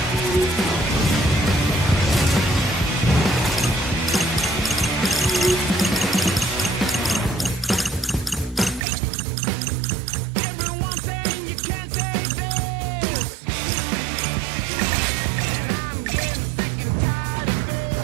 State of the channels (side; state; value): left; drops out; at 8.8 s